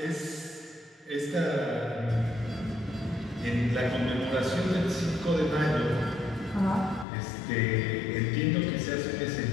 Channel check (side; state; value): right; drops out; at 7.1 s